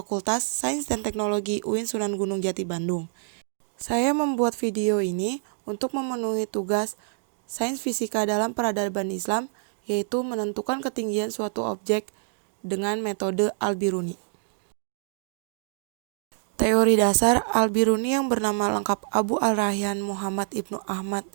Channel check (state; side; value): silent; left; digital silence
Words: Sains dan Teknologi UIN Sunan Gunung Jati Bandung. Saya membuat video ini untuk memenuhi tugas Sains Fisika dalam peradaban Islam, yaitu menentukan ketinggian suatu objek dengan metode Al-Biruni. Teori dasar Al-Biruni yang bernama lengkap Abu Al-Rayyan Muhammad Ibnu Ahmad